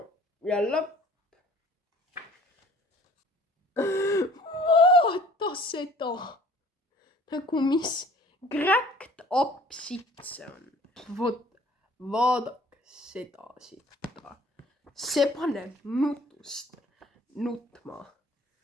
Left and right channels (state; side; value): normal; both; correlation 0.52